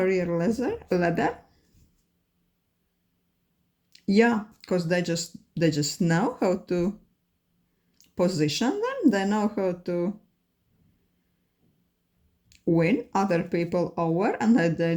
ladder. Yeah, because they just know how to position them. They know how to win other people over, and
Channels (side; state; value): both; identical; correlation 1.00